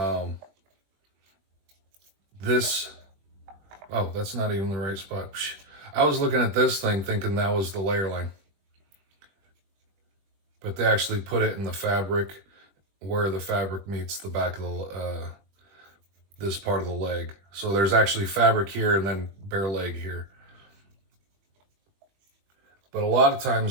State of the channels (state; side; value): late; left; 21 ms